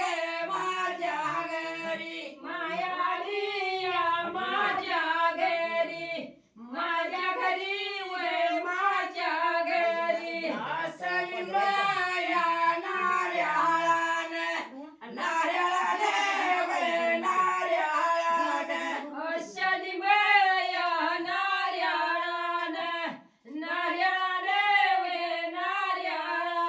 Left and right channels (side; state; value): both; identical; correlation 1.00